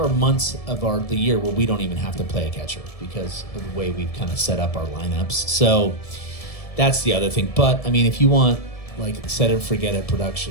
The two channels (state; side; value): late; right; 1.7 ms